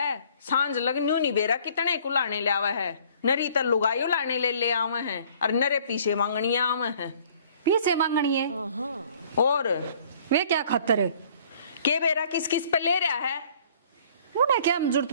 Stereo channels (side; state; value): both; inverted; correlation -0.56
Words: सांझ लग न्यू नहीं बेरा कितने कुलाने ले आवे है। नरी तो लुगाई उलाने ले आवे है, और नरे पीछे मांगनिया आवे है। पीछे मांगनी है और वे क्या खतर है। के बेरा किस किस पे ले रहा है। उन्हें क्या जरूरत